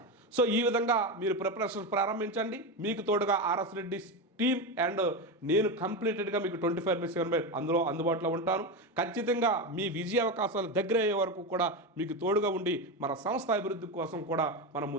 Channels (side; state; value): both; normal; correlation 0.16